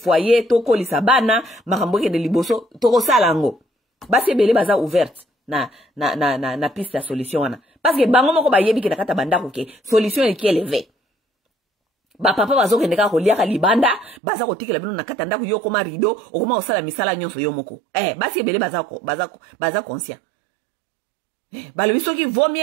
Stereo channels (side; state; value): left; drops out; at 14.2 s